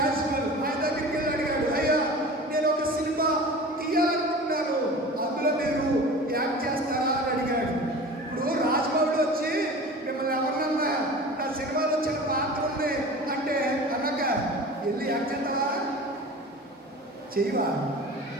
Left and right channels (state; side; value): normal; both; correlation 0.37